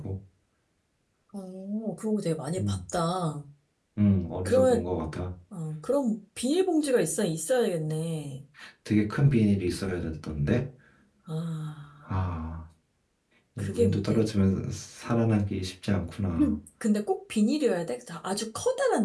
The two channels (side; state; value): both; identical; correlation 1.00